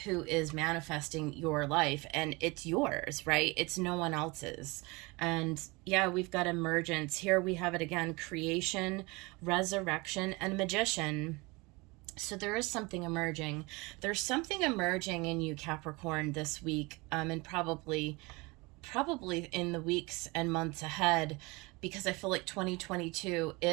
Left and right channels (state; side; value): quieter; left; 25.1 dB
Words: who is manifesting your life and it's yours, right? It's no one else's. And yeah, we've got emergence. Here we have it again: creation, resurrection, and magician. So there is something emerging. There's something emerging in you, Capricorn, this week, and probably in the weeks and months ahead, because I feel like 2022